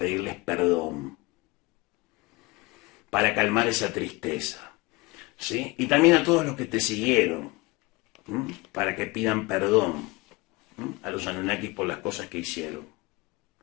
perdón, para calmar esa tristeza, ¿sí? Y también a todos los que te siguieron, para que pidan perdón a los Anunnakis por las cosas que hicieron.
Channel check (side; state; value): right; quieter; 23.2 dB